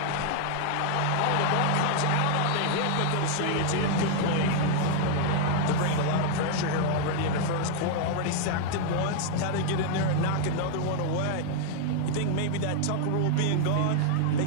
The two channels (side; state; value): both; different; correlation 0.00